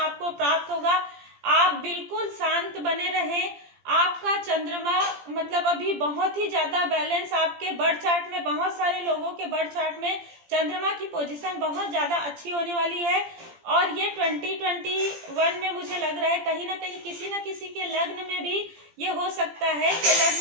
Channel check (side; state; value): left; late; 17 ms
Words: प्राप्त होगा। आप बिल्कुल शांत बने रहें। आपका चंद्रमा मतलब अभी बहुत ही ज्यादा बैलेंस, आपके बर्थ चार्ट में, बहुत सारे लोगों के बर्थ चार्ट में चंद्रमा की पोजीशन बहुत ज्यादा अच्छी होने वाली है। और ये 2021 में मुझे लग रहा है कहीं ना कहीं किसी न किसी के लग्न में भी ये हो सकता है कि